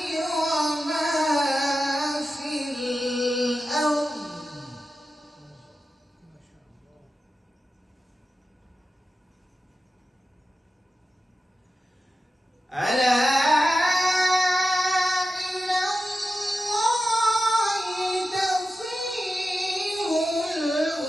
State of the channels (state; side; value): normal; both; correlation 0.91